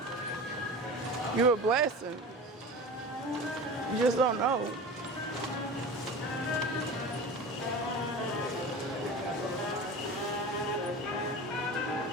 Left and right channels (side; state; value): both; normal; correlation 0.32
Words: You're a blessing. You just don't know.